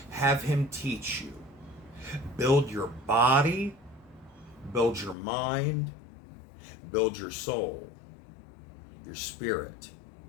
Have him teach you. Build your body, build your mind, build your soul, your spirit,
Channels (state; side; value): drops out; right; at 5.2 s